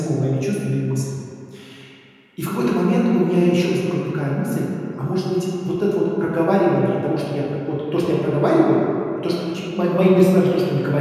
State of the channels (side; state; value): both; identical; correlation 1.00